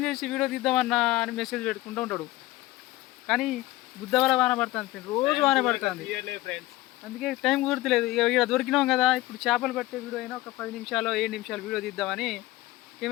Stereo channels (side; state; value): right; quieter; 17.6 dB